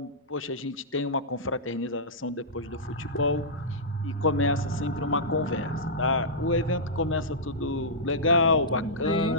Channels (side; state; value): both; normal; correlation -0.14